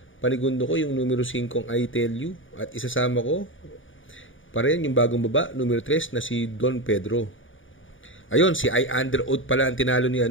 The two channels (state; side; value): late; right; 0.57 ms